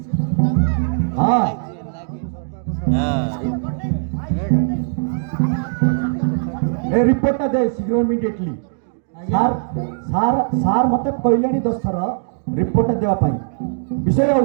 ହଁ ଏ ରିପୋର୍ଟଟା ଦେ ଶୀଘ୍ର ଇମିଡିଏଟଲି ସାର୍ ସାର୍ ସାର୍ ମୋତେ କହିଲେଣି 10 ଥର ରିପୋର୍ଟଟା ଦେବା ପାଇଁ ବିଷୟ ଆଉ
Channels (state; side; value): silent; left; digital silence